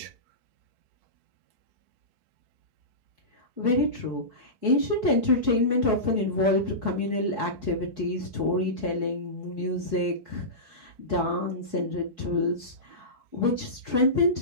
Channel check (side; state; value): left; late; 4.6 ms